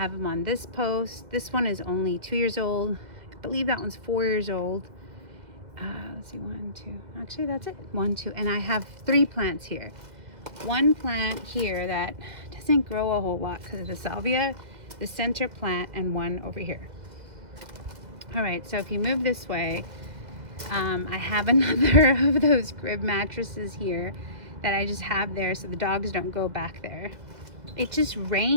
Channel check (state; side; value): late; left; 2.0 ms